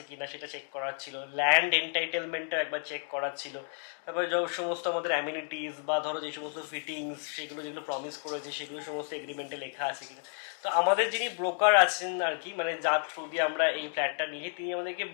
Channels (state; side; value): silent; right; 57 dB below the other